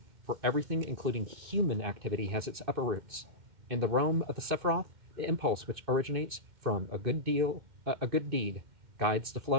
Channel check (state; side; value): late; left; 2.6 ms